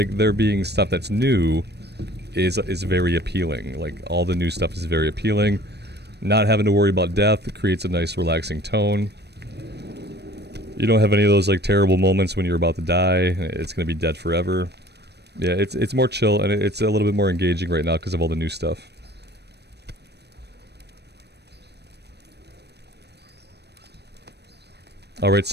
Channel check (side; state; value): left; late; 0.48 ms